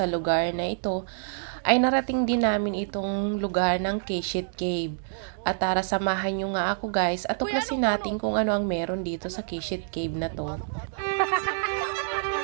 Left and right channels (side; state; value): left; silent; digital silence